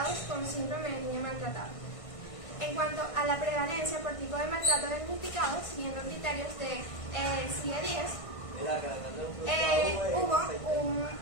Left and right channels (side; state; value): right; late; 1.5 ms